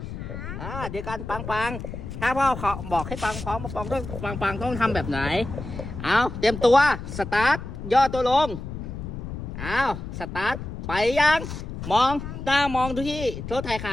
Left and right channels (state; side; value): noise; left; rumble, 8 dB below the sound